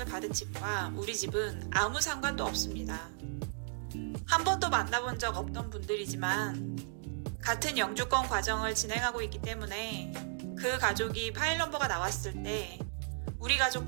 받은 집과 우리 집은 아무 상관도 없습니다. 한 번도 만나본 적 없던 분들이지만 같은 영주권 과정을 진행하고 있기 때문에 그 가족이 파일 넘버가 나왔을 때 우리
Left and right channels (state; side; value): silent; left; digital silence